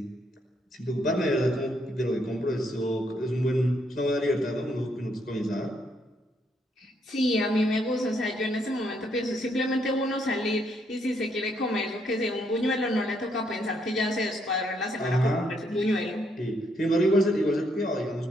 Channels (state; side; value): normal; both; correlation 0.73